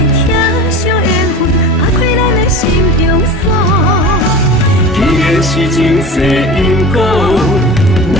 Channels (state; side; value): normal; both; correlation 0.33